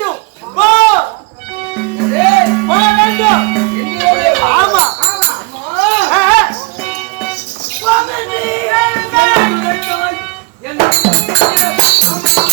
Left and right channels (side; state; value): left; quieter; 28.1 dB